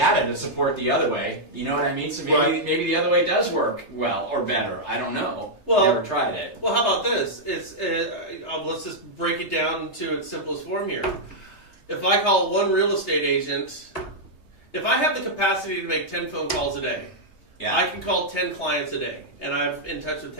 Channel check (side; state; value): right; late; 3.3 ms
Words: to support the other way. You know what I mean? So maybe the other way does work well or better. I don't know. Well, never tried it. Well, how about this? Let's just break it down to its simplest form here. If I call one real estate agent, if I have the capacity to make 10 phone calls a day, I can call 10 clients a day, and I'm in touch with